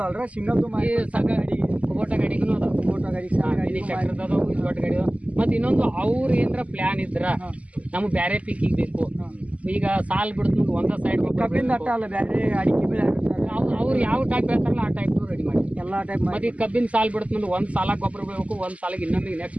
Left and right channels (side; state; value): left; late; 0.068 ms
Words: ಸಿಂಗಲ್ ಈ ಸಗ ಗಾಡಿ ಫೋಟೋ ಗಾಡಿಗೂ ಅದಾವ, ಫೋಟೋ ಗಾಡಿ ಟ್ರ್ಯಾಕ್ಟರ್ ಅದಾವ, ದೊಡ್ಡ ಗಾಡಿ ಅದಾವ. ಮತ್ತು ಇನ್ನೊಂದು ಅವ್ರು ಏನಾರ ಪ್ಲ್ಯಾನ್ ಇದ್ರ ನಮ್ಗೆ ಬೇರೆ ಪೀಕಿಗೆ ಬೇಕು, ಈಗ ಸಾಲ್ ಬಿಡ್ತು ಒಂದೇ ಸೈಡ್ ಕಬ್ಬಿನ ಅಟ್ಟ ಅಲ್ಲ ಬೇರೆ ಅಡಿಕೆ ಬೆಳೆ ಅವ್ರು ಯಾವ ಟೈಪ್ ಹೇಳ್ತಾರಲ್ಲ ಆ ಟೈಪ್ ರೆಡಿ ಮಾಡಿ ಎಲ್ಲಾ ಟೈಪ್ ಮತ್ತೆ ಈ ಕಬ್ಬಿನ ಸಾಲ್ ಬಿಡುತ್ತೆ ಮುಂದೆ ಒಂದು ಸಾಲಾಗ ಗೊಬ್ಬರ ಬೀಳಬೇಕು, ಒಂದು ಸಾಲಿಗೆ ಇನ್ನೊಂದಿಗೆ ನೆಕ್ಸ್ಟ್